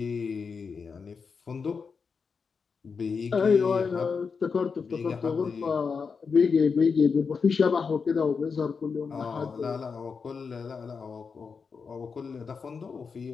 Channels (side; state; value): right; quieter; 5.4 dB